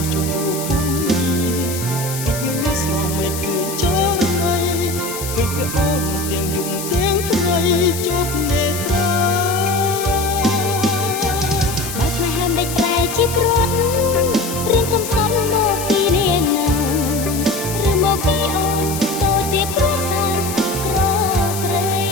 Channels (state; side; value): noise; left; hiss, 8 dB below the sound